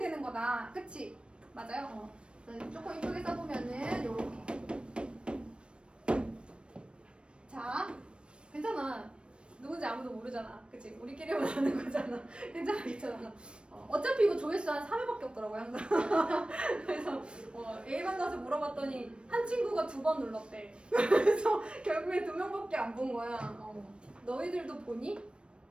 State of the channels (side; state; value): left; late; 0.057 ms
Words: 거다. 그치? 맞아요? 조금 이쁘게 써보면은 요렇게. 자, 괜찮아. 누군지 아무도 모르잖아. 그치? 우리끼리만 아는 거잖아. 괜찮아, 괜찮아. 어차피 이거 조회수 한 3회밖에 없더라고요, 항상. 그래서 A반 가서 물어봤더니 한 친구가 2번 눌렀대. 그래서 결국에 2명밖에 안 본 거야. 너희들도 보니?